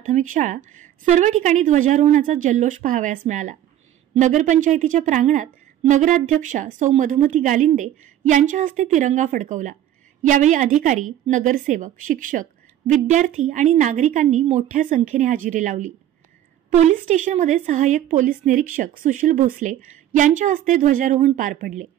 शाळा सर्व ठिकाणी ध्वजारोहणाचा जल्लोष पाहावयास मिळाला। नगरपंचायतीच्या प्रांगणात नगराध्यक्षा सौ मधुमती गालिंदे यांच्या हस्ते तिरंगा फडकवला। यावेळी अधिकारी, नगरसेवक, शिक्षक, विद्यार्थी आणि नागरिकांनी मोठ्या संख्येने हजेरी लावली। पोलीस स्टेशनमध्ये सहाय्यक पोलीस निरीक्षक सुशील भोसले यांच्या हस्ते ध्वजारोहण पार पडले।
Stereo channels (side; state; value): left; quieter; 11.7 dB